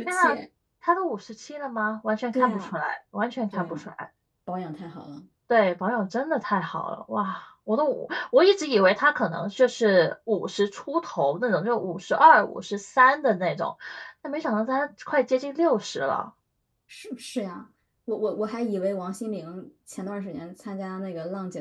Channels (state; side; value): identical; both; correlation 1.00